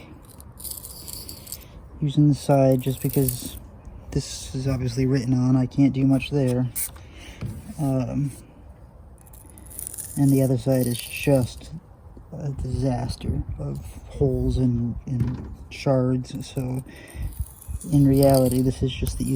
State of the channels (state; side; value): identical; both; correlation 1.00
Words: Using the side just because this is obviously written on. I can't do much there. And the other side is just a disaster of holes and shards. So in reality, this is just the